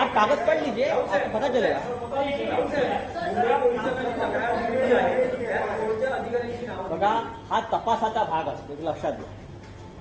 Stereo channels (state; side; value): identical; both; correlation 1.00